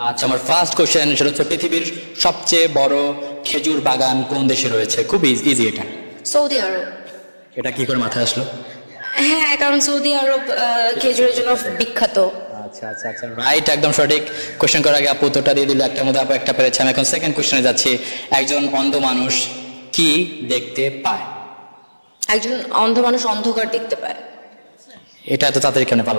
আচ্ছা, আমার ফার্স্ট কোশ্চেন সেটা হচ্ছে পৃথিবীর সবচেয়ে বড় খেজুর বাগান কোন দেশে রয়েছে? খুব ইজি এটা। সৌদি আরব। এটা কি করে মাথায় আসলো? হ্যাঁ, কারণ সৌদি আরব খেজুরের জন্য বিখ্যাত। আচ্ছা আচ্ছা আচ্ছা, রাইট, একদম সঠিক। কোশ্চেন করার আগে আপু উত্তরটা দিয়ে দিল। একটার মধ্যে আপু একটা পেরেছে। আমি এখন সেকেন্ড কোশ্চেনে যাচ্ছি। একজন অন্ধ মানুষ কি দেখতে পায়? একজন অন্ধ মানুষ অন্ধকার দেখতে পায়। এটা এত তাড়াতাড়ি কেন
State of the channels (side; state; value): both; inverted; correlation -1.00